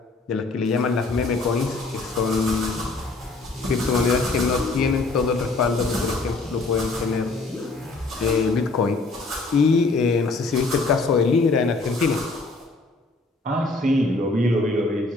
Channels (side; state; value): right; quieter; 3.4 dB